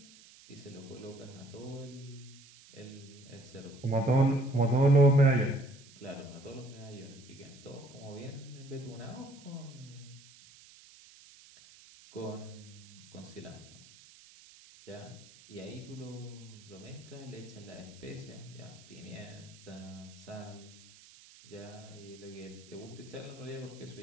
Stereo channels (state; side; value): noise; right; hiss, 21 dB below the sound